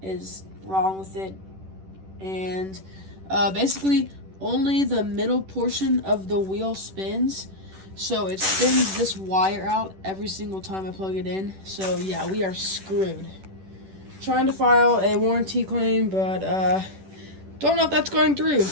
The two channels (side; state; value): left; late; 10 ms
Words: is wrong with it. And, basically, only the middle portion of the wheel spins. So, it spins this wire out every single time I plug it in. So, yeah, we are screwed. Trying to file a warranty claim, but, don't know if that's going through,